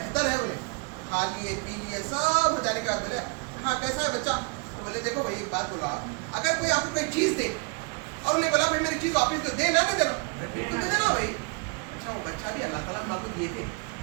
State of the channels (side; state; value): left; quieter; 32.8 dB